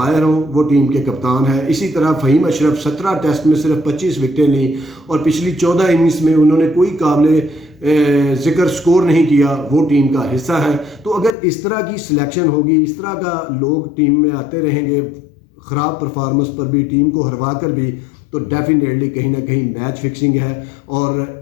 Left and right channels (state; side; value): drops out; right; at 11.4 s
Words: ہوں، وہ ٹیم کے کپتان ہیں. اسی طرح فہیم اشرف 17 ٹیسٹ میں صرف 25 وکٹیں لیں، اور پچھلی 14 اننگز میں انہوں نے کوئی قابل ذکر سکور نہیں کیا، وہ ٹیم کا حصہ ہے. تو اگر اس طرح کی سلیکشن ہوگی، اس طرح کا لوگ ٹیم میں آتے رہیں گے خراب پرفارمنس پر بھی، ٹیم کو ہروا کر بھی، تو ڈیفینیٹلی کہیں نہ کہیں میچ فکسنگ ہے. اور